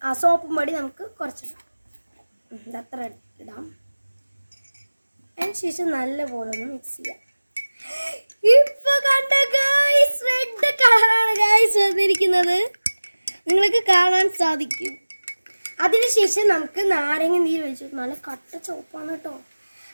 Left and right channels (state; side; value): inverted; both; correlation -1.00